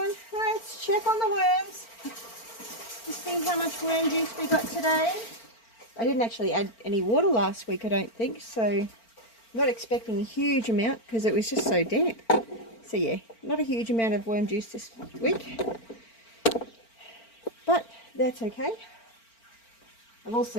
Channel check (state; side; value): late; right; 4.4 ms